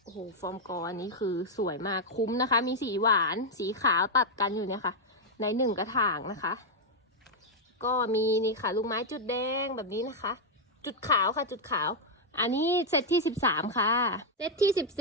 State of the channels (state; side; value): normal; both; correlation -0.02